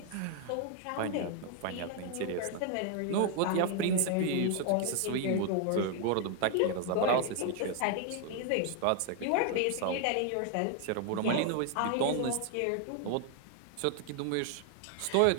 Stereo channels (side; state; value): both; different; correlation 0.00